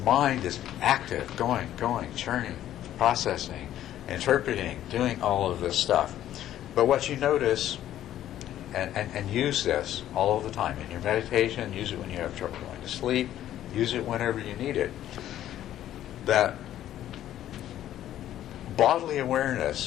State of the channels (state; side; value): quieter; right; 12.2 dB